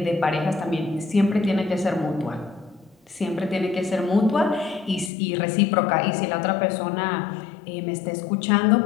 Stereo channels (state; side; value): drops out; right; at 5.1 s